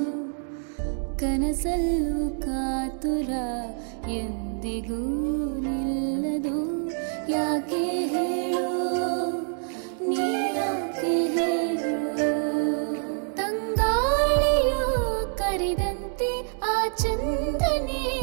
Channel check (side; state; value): left; silent; 61 dB below the other